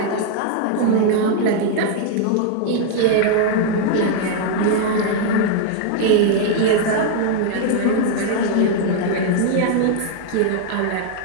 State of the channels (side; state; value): both; different; correlation 0.00